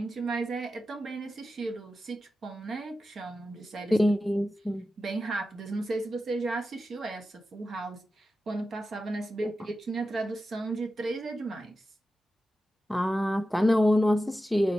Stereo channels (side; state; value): both; normal; correlation 0.92